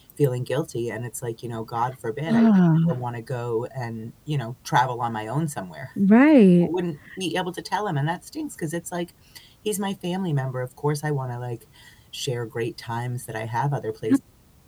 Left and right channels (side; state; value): both; identical; correlation 1.00